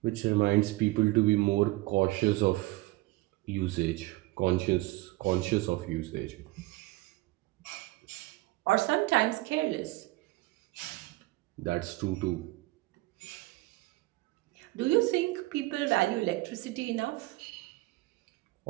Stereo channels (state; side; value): quieter; left; 20.5 dB